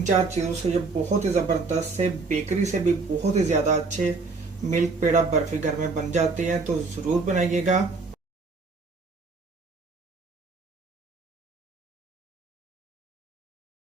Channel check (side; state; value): left; quieter; 4.1 dB